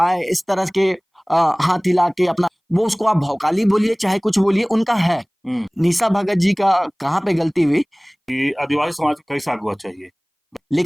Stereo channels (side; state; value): both; identical; correlation 1.00